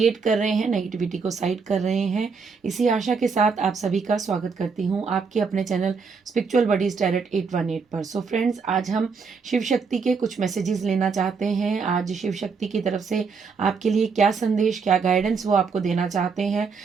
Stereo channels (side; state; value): left; quieter; 5.3 dB